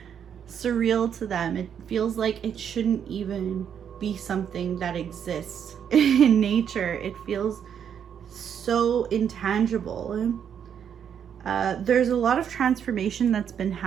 surreal to them. It feels like it shouldn't even be something that exists in nature. It feels so intangible. There's a lot of transformation that's been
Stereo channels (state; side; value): quieter; left; 8.3 dB